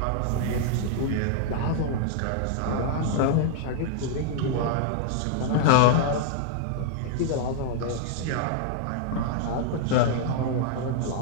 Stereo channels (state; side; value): different; both; correlation -0.01